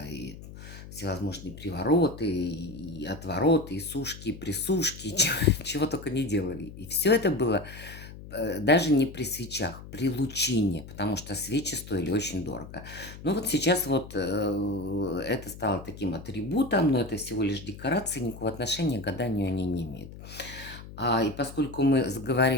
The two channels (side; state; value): left; noise; hum, 14 dB below the sound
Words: и всевозможные привороты, и отвороты, и сушки, и присушки, чего только не делали. И все это было даже не при свечах, при лучине, потому что свечи стоили очень дорого. Но вот сейчас вот это стало таким атрибутом, но это всего лишь декорация, никакого отношения к гаданию они не имеют. И поскольку мы